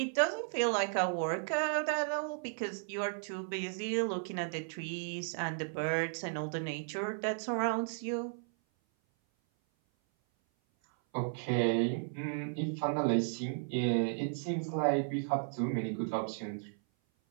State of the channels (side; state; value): left; silent; 55 dB below the other